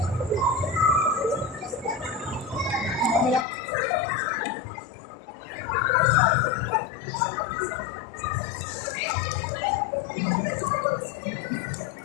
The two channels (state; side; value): drops out; right; at 3.5 s